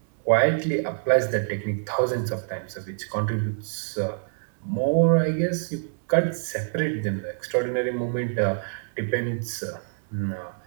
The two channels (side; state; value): left; silent; digital silence